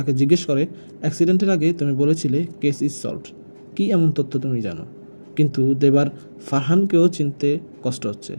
জিজ্ঞেস করে, অ্যাক্সিডেন্টের আগে তুমি বলেছিলে কেস ইজ সলভড, কী এমন তথ্য তুমি জানো? কিন্তু দেবার ফারহানকেও চিনতে কষ্ট হচ্ছে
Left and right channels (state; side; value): inverted; both; correlation -1.00